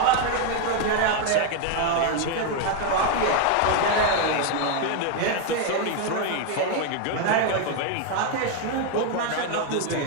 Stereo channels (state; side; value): different; both; correlation 0.01